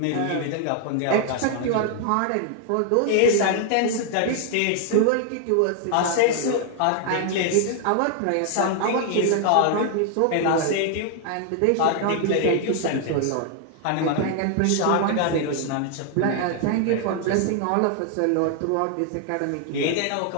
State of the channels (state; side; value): different; both; correlation 0.00